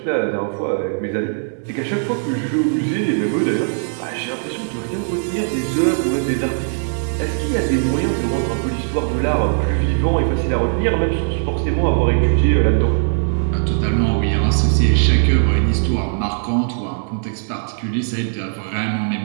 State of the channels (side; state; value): left; silent; digital silence